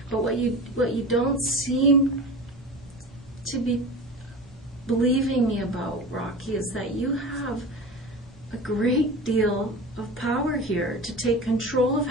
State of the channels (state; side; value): normal; both; correlation 0.32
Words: But what you don't seem to be believing me about, Rocky, is that you have a great deal of power here to take control of